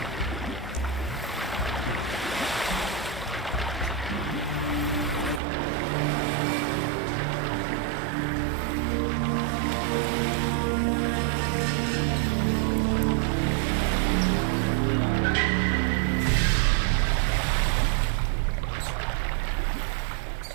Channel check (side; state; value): left; drops out; at 5.4 s